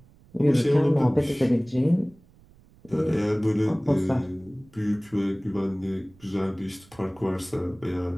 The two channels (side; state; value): right; noise; rumble, 27 dB below the sound